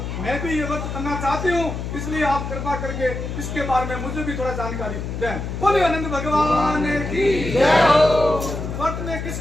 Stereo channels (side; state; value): left; noise; hum, 5 dB below the sound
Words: मैं भी ये व्रत करना चाहती हूँ, इसलिए आप कृपा करके इसके बारे में मुझे भी थोड़ा जानकारी दें। बोले अनंत भगवान की जय हो। व्रत में